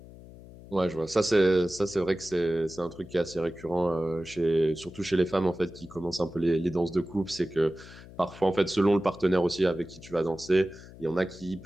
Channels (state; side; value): noise; left; hum, 18 dB below the sound